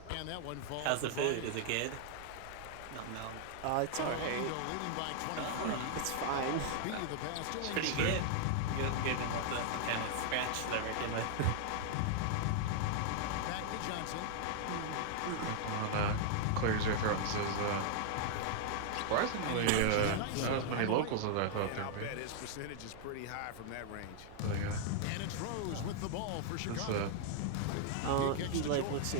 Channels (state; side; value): different; both; correlation -0.01